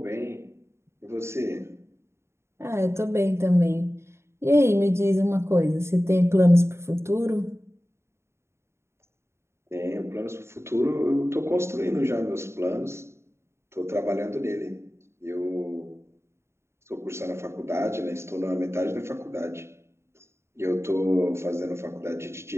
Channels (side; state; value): left; late; 0.13 ms